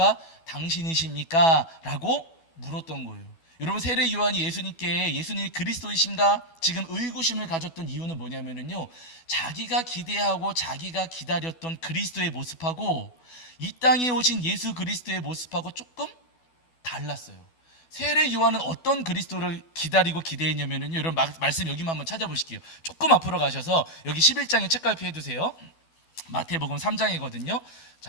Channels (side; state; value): right; late; 12 ms